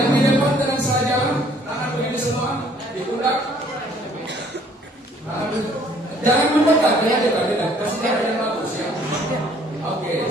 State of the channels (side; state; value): both; normal; correlation 0.60